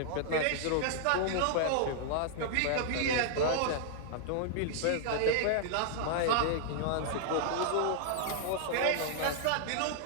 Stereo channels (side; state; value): both; different; correlation -0.01